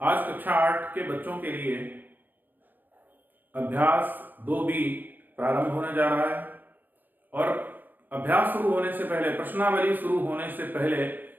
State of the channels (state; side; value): late; left; 0.087 ms